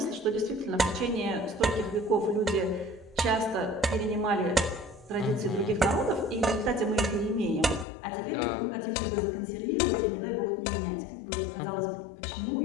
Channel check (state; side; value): drops out; right; at 7.9 s